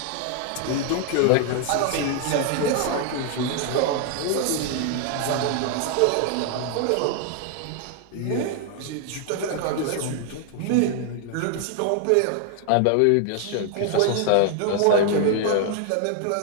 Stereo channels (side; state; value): both; different; correlation 0.00